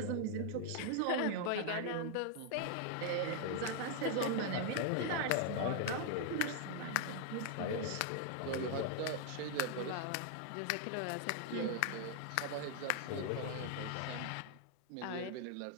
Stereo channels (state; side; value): different; both; correlation 0.00